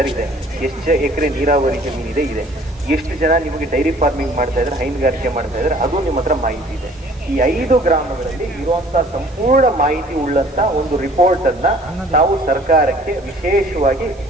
ಇದೆ, ಎಷ್ಟು ಎಕರೆ ನೀರಾವರಿ ಜಮೀನಿದೆ ಇದೆ, ಎಷ್ಟು ಜನ ನಿಮಗೆ ಡೈರಿ ಫಾರ್ಮಿಂಗ್ ಮಾಡ್ತಾ ಇದ್ದಾರೆ, ಹೈನುಗಾರಿಕೆ ಮಾಡ್ತಾ ಇದ್ದಾರೆ, ಅದು ನಿಮ್ಮ ಹತ್ರ ಮಾಹಿತಿ ಇದೆ. ಈ 5 ಗ್ರಾಮಗಳಲ್ಲಿ ಇರುವಂತಹ ಸಂಪೂರ್ಣ ಮಾಹಿತಿ ಉಳ್ಳಂತ ಒಂದು ರಿಪೋರ್ಟ್ ಅನ್ನ ನಾವು ಸರ್ಕಾರಕ್ಕೆ ವಿಶೇಷವಾಗಿ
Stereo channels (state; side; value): noise; right; hiss, 29 dB below the sound